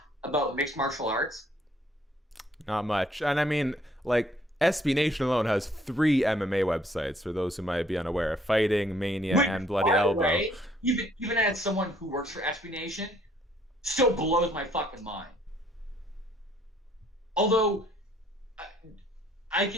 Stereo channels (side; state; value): both; normal; correlation 0.64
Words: about mixed martial arts? Not much. And I mean, like, SB Nation alone has 3 MMA websites, for those who might be unaware: Fighting, Mania, and Bloody Elbow. Way, even as someone who works for SB Nation, still blows my fucking mind. Although I